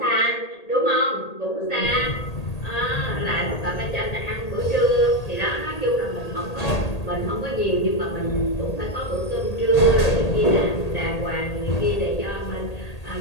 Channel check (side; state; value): right; late; 1.8 ms